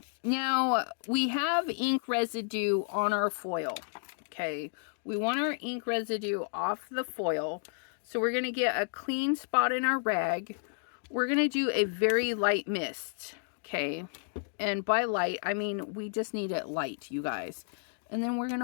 now we have ink residue on our foil. Okay, we want our ink residue off the foil. So we're going to get a clean spot in our rag. We're going to do a very light mist. Okay, and by light, I mean we just need it light, you guys. And then we're going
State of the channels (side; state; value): right; silent; digital silence